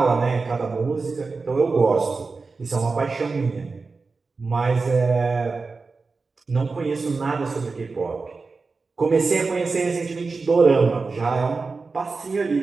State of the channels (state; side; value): quieter; left; 4.2 dB